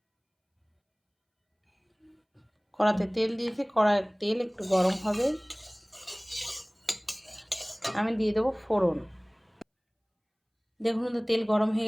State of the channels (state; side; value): identical; both; correlation 1.00